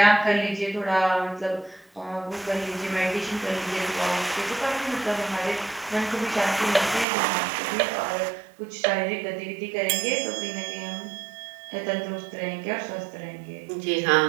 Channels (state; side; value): drops out; left; at 7.1 s